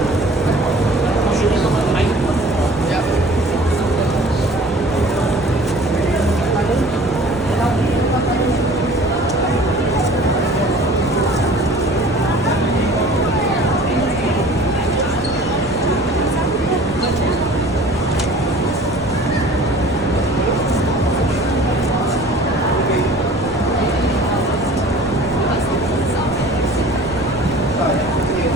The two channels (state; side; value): noise; right; rumble, 15 dB below the sound